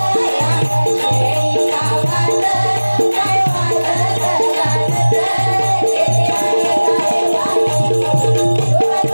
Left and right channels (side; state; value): both; inverted; correlation -1.00